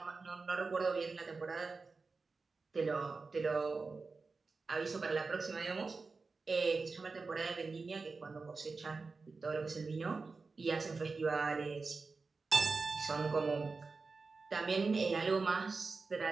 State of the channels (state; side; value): quieter; left; 4.2 dB